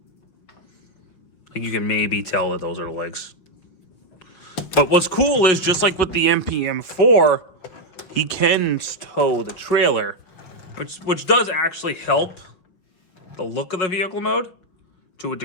like you can maybe tell that those are the legs. But what's cool is, just like with the MPM-4, he can tow the trailer, which does actually help the look of the vehicle mode to a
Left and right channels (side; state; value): right; late; 5.9 ms